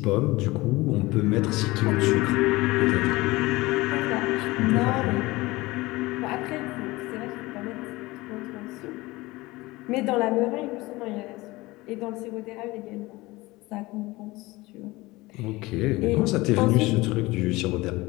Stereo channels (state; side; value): quieter; right; 20.8 dB